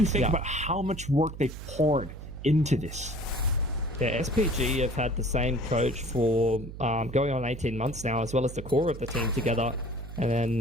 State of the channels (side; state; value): right; noise; hum, 11 dB below the sound